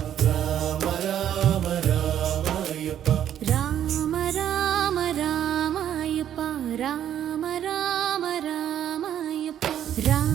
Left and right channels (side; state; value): left; quieter; 10.4 dB